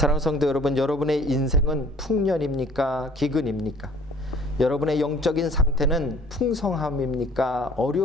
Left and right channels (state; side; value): normal; both; correlation 0.53